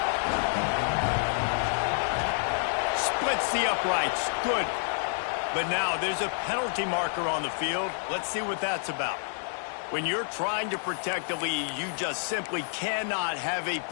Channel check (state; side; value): silent; right; digital silence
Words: Splits the uprights. Good. But now there's a penalty marker on the field. Let's see what that's about. When you're trying to protect the lead, you just simply cannot have a